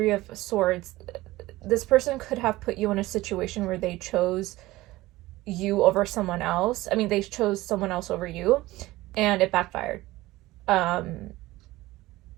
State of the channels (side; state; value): left; quieter; 18.2 dB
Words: of Swords, this person could have put you in a situation where they chose you over someone else. I mean, they chose someone else over you, and it backfired. And